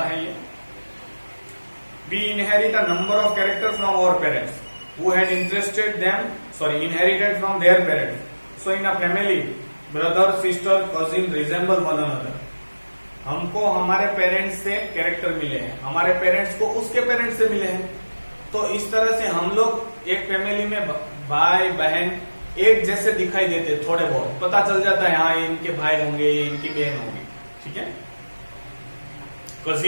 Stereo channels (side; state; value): both; inverted; correlation -1.00